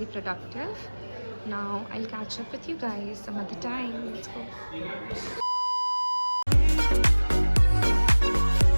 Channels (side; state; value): both; inverted; correlation -1.00